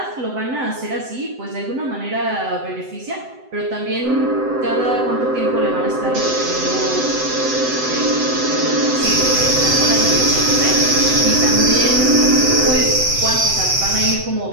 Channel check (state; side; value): late; left; 7.8 ms